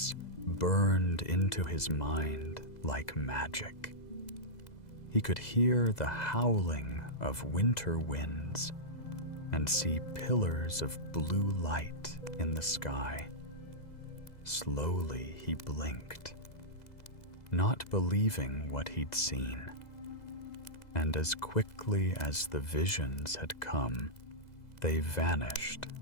burned into his mind like magic. He could hear the howling of winter winds and see pillars of blue light in the sky. Slowly he blinked, not believing what he'd seen. And as quickly as the visions had come, they vanished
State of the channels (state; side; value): late; right; 2.0 ms